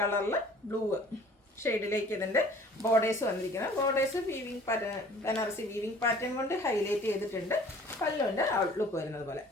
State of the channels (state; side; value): normal; both; correlation 0.50